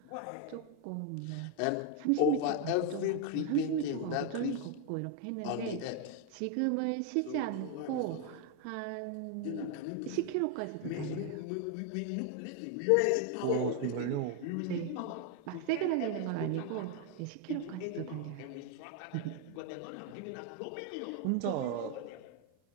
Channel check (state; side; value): different; both; correlation 0.01